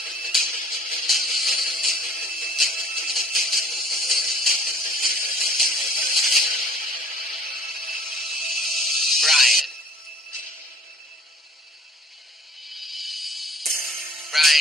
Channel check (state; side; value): normal; both; correlation 0.54